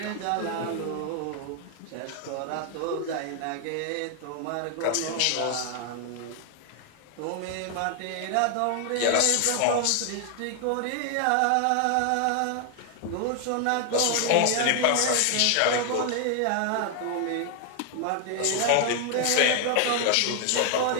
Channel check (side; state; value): both; different; correlation 0.00